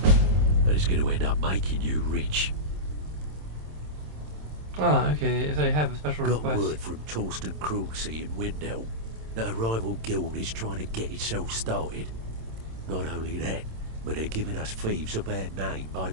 And it's going to end up making you rich. Ah, okay. So I have a special Got request. word from Torsten Cruelseat in Windhelm that a rival guild is trying to get itself started. Not only that, but they're giving us thieves a bad name by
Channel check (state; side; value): late; left; 26 ms